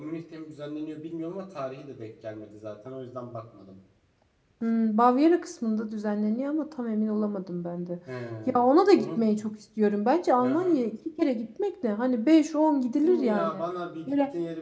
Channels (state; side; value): identical; both; correlation 1.00